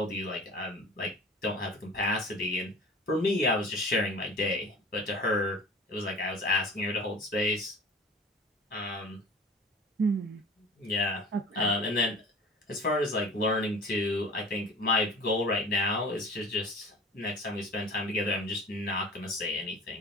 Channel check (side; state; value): both; normal; correlation 0.41